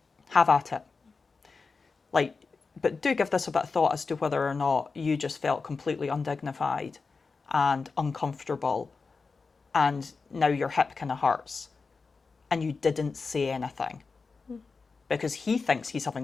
have at it. Like, but do give this a bit of thought as to whether or not you just felt completely undignified and uncomfortable, and now your hip kind of hurts, and you didn't say anything. Because he thinks he's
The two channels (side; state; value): right; quieter; 4.5 dB